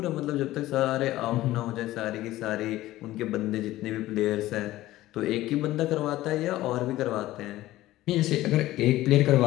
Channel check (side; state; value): right; quieter; 16.0 dB